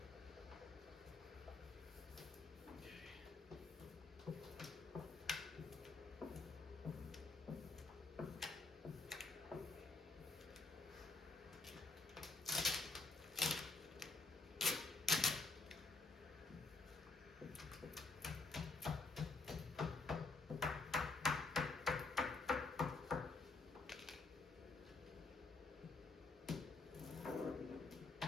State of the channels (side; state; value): right; quieter; 3.7 dB